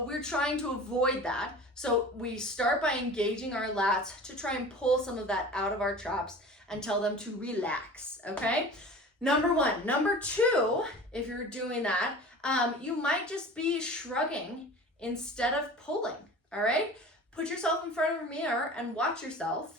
we're trying to avoid that. So we start by engaging our lats to try and pull some of that out of our traps and tell them to relax, okay? Number one. Number two, if you're doing that, you might just be shrugging instead of pulling, all right? Put yourself in front of a mirror and watch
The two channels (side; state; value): both; normal; correlation 0.39